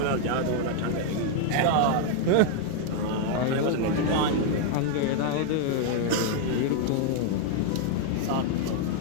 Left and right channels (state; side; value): different; both; correlation 0.00